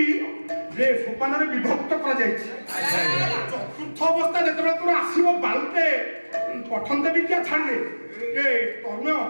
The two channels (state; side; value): inverted; both; correlation -1.00